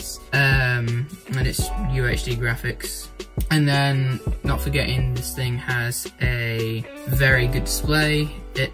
and it's UHD graphics. And then, not forgetting, this thing has a very good display. It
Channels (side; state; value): both; identical; correlation 1.00